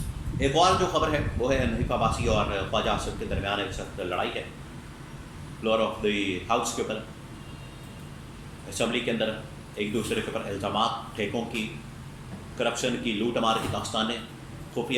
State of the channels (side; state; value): both; identical; correlation 1.00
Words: ایک اور جو خبر ہے وہ ہے حنیف عباسی اور خواجہ آصف کے درمیان ایک سخت لڑائی ہے فلور آف دی ہاؤس کے اوپر. اسمبلی کے اندر ایک دوسرے کے اوپر الزامات، ٹھیکوں کی، کرپشن کی، لوٹ مار کی داستانیں،